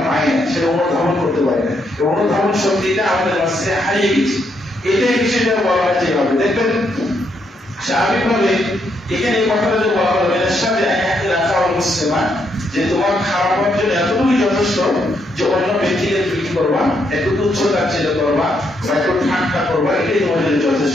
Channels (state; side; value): normal; both; correlation 0.76